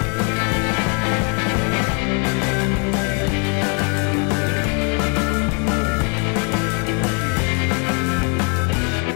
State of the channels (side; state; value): right; quieter; 35.6 dB